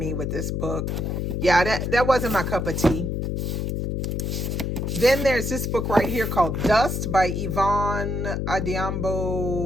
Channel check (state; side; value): noise; left; hum, 1 dB below the sound